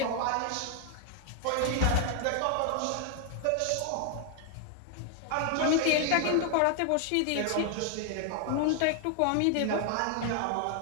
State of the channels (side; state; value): both; different; correlation 0.00